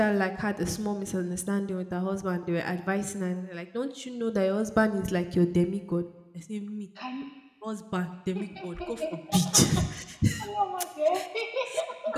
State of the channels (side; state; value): both; identical; correlation 1.00